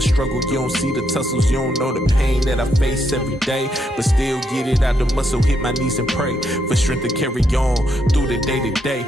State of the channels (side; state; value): both; normal; correlation 0.78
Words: you don't see the tussles, you don't know the pain that I face every day. But still get it out the muscle, hit my knees and pray for strength to carry on through the day to day.